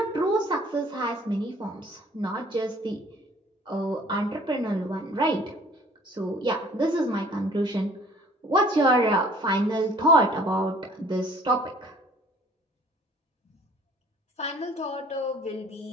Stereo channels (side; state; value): both; normal; correlation 0.54